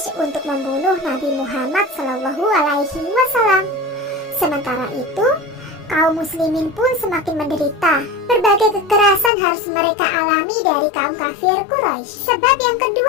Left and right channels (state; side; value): drops out; right; at 9.3 s